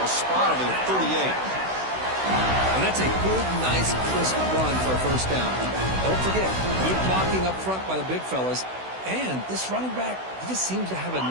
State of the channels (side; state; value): left; late; 16 ms